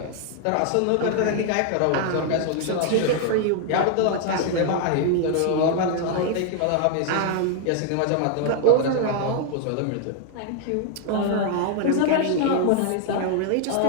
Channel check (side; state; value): both; different; correlation 0.00